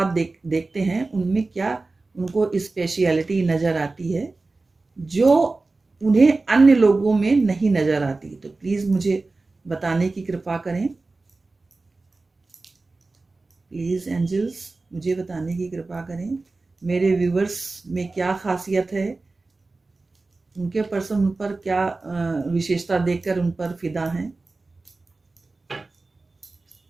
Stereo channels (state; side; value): quieter; left; 3.5 dB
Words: देखते हैं, उनमें क्या उनको स्पेशलिटी नज़र आती है जो उन्हें अन्य लोगों में नहीं नज़र आती। तो प्लीज़ मुझे बताने की कृपा करें। प्लीज़ एंजल्स मुझे बताने की कृपा करें मेरे व्यूवर्स में क्या खासियत है, उनके पर्सन उन पर क्या विशेषता देखकर उन पर फिदा हैं।